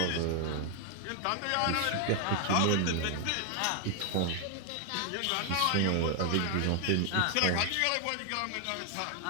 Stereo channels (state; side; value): different; both; correlation 0.00